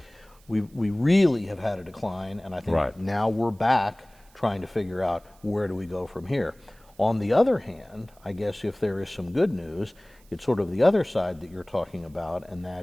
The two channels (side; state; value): right; noise; hiss, 30 dB below the sound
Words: we really have had a decline, and I think now we're back trying to figure out where do we go from here. On the other hand, I guess if there is some good news, it's sort of the other side that you're talking about, and